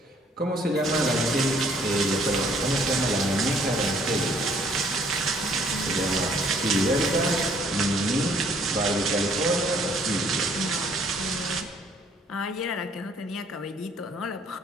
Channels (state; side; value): normal; both; correlation 0.62